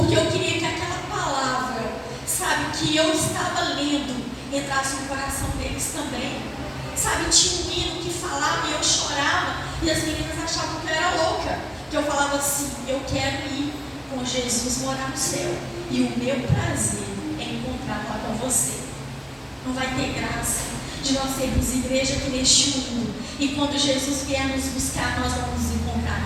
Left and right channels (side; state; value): both; identical; correlation 1.00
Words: eu queria que aquela palavra, sabe, que eu estava lendo, entrasse no coração deles também. Sabe, tinha um hino que falava e eu chorava e as meninas achavam que eu era louca, que eu falava assim: eu quero ir com Jesus morar no céu e o meu prazer é encontrar lá com você. Não vai ter graça de nós sermos igreja aqui neste mundo e quando Jesus vier nos buscar, nós vamos nos